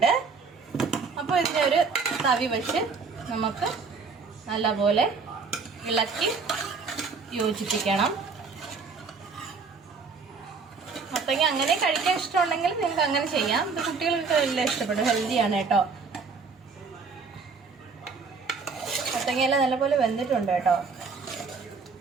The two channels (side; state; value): left; quieter; 4.9 dB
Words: അപ്പോൾ ഇതിനെ ഒരു തവി വെച്ച് നമുക്ക് നല്ലപോലെ ഇളക്കി യോജിപ്പിക്കണം. മത്തങ്ങ അങ്ങനെ കഴിക്കാൻ ഇഷ്ടമുണ്ടെങ്കിൽ നിങ്ങൾക്ക് അങ്ങനെ ചെയ്യാം. ഇത് കുട്ടികൾക്ക് എല്ലാം ഇഷ്ടപ്പെടും. ഹെൽത്തിയാണ് കേട്ടോ. മത്തങ്ങയെല്ലാം നല്ലപോലെ വെന്തിട്ടുണ്ട് കേട്ടോ.